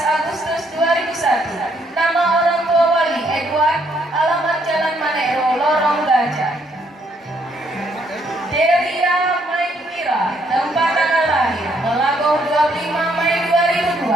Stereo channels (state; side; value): normal; both; correlation 0.70